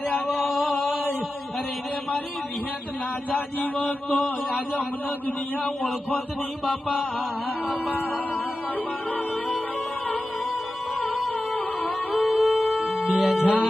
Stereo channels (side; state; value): both; normal; correlation 0.93